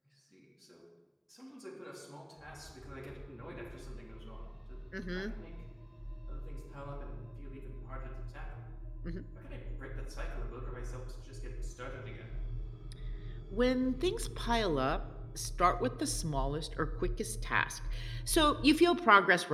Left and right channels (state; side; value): identical; both; correlation 1.00